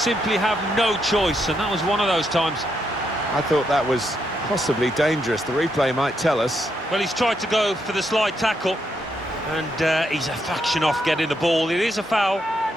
have no choice, and that was one of those times. I thought that was possibly dangerous. The replay might tell us. Well, he's tried to go for the slide tackle, and he's a fraction off getting the ball. It is a foul.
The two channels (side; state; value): both; normal; correlation 0.79